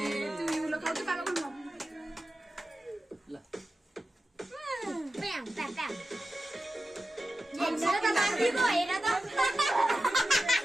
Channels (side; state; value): both; normal; correlation 0.93